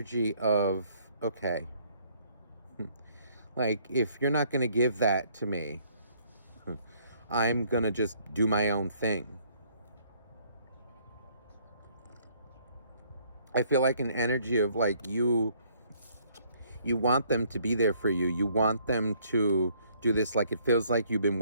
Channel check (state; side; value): inverted; both; correlation -0.64